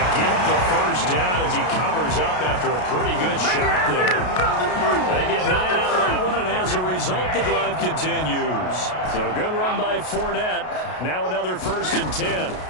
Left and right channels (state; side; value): late; right; 33 ms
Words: get the first down as he covers up after a pretty good shot there. They get 9 out of that one, and as a result, the drive continues. So good run by Fournette. Now another 1st and 10.